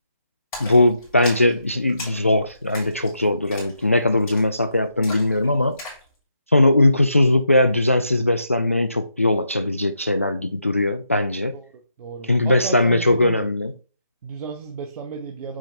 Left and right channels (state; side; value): inverted; both; correlation -0.80